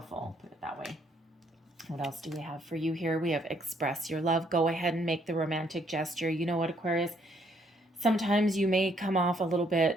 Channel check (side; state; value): both; normal; correlation 0.69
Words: Put it that way. What else do we have for you here? We have express your love. Go ahead and make the romantic gesture. You know what, Aquarius? Sometimes you may come off a little